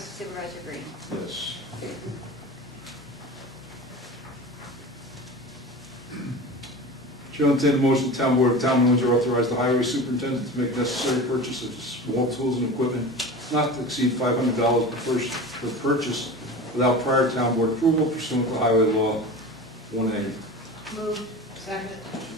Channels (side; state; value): both; normal; correlation 0.33